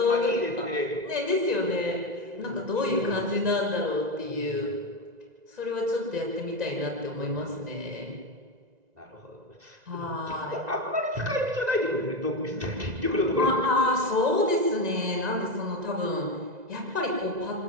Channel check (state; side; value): late; left; 1.9 ms